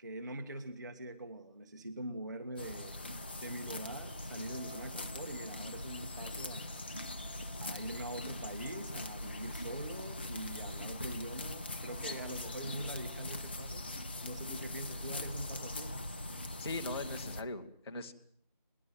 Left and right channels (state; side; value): inverted; both; correlation -0.63